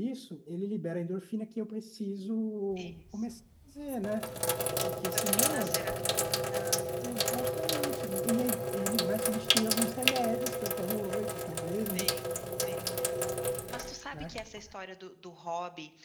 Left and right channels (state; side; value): identical; both; correlation 1.00